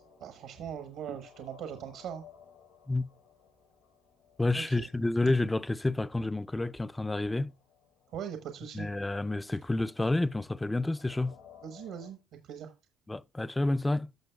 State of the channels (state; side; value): normal; both; correlation 0.96